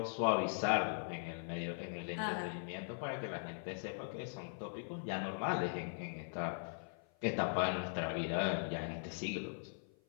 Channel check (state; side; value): silent; right; 51 dB below the other